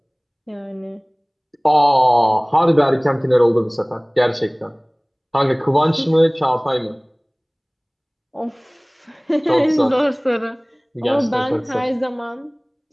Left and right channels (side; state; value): both; identical; correlation 1.00